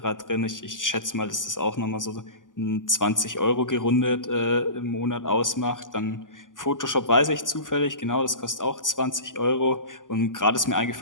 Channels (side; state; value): right; late; 0.88 ms